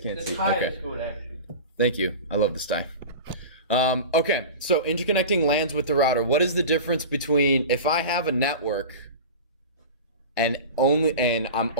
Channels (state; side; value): inverted; both; correlation -0.31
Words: The see. tie Okay. is good, actually. Thank you. I love this tie. Okay, so interconnecting LANs with the router. What is the difference between if I have a network and I'm